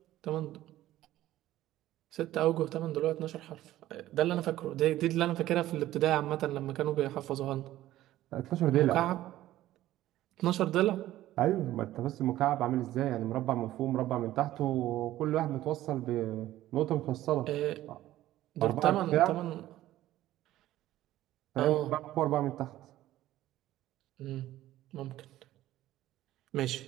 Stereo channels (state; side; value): quieter; left; 14.6 dB